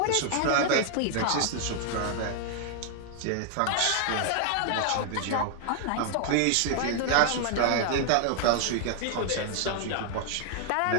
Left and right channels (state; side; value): different; both; correlation 0.00